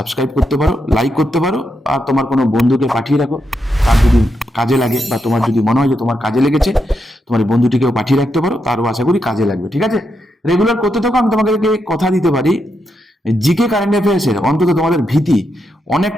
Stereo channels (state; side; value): normal; both; correlation 0.83